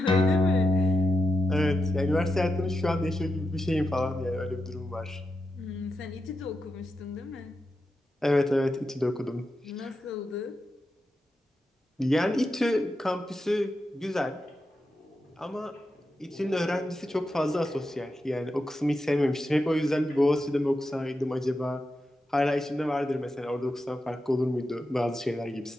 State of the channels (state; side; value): normal; both; correlation 0.88